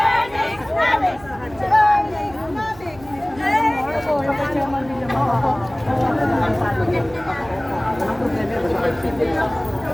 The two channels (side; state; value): right; noise; hum, 20 dB below the sound